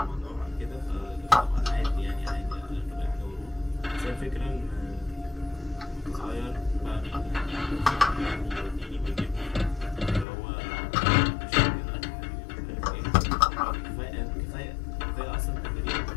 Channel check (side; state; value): right; drops out; at 10.2 s